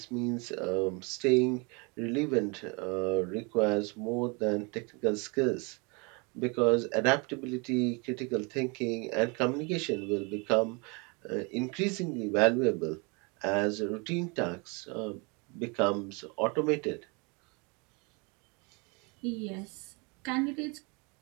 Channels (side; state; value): left; quieter; 30.4 dB